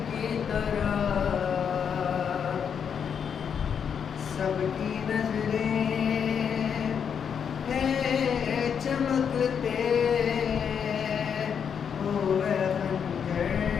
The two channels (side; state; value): right; quieter; 7.4 dB